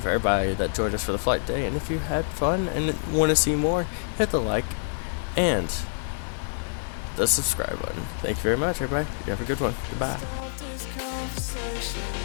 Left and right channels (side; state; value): right; silent; digital silence